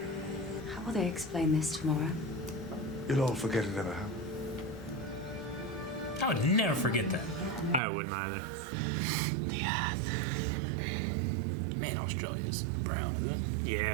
how will they explain this tomorrow? You'll all forget it ever happened. I would never forget that. I wouldn't either. Yeah. Man, Australia's brown, isn't it?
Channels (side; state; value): left; drops out; at 7.8 s